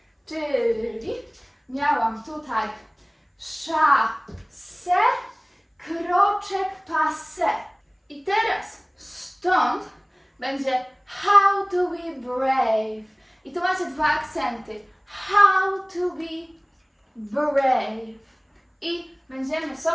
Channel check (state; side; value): identical; both; correlation 1.00